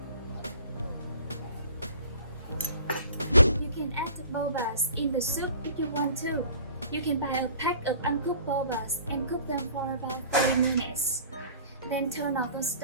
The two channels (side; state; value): both; inverted; correlation -0.47